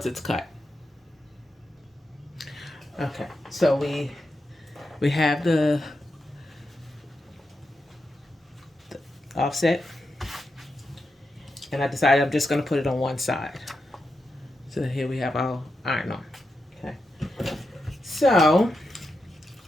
it's cut. Okay, so we have the offset, and I decided I'm just going to put it on one side. So here we have our iron on. Okay, so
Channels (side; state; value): both; normal; correlation 0.87